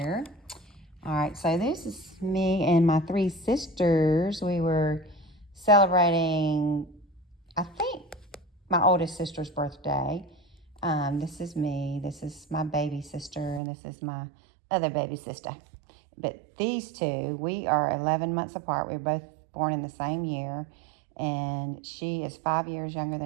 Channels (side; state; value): left; drops out; at 13.6 s